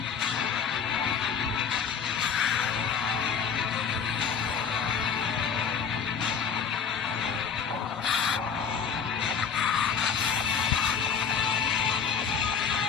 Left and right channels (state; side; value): quieter; right; 6.7 dB